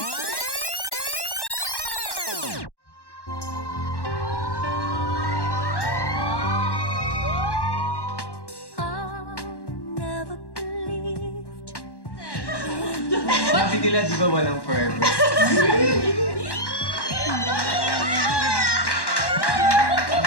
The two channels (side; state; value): right; late; 1.1 ms